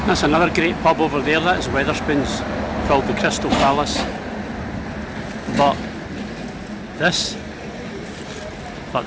That's another great pub over there, that is Wetherspoons, called the Crystal Palace. But this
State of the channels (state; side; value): identical; both; correlation 1.00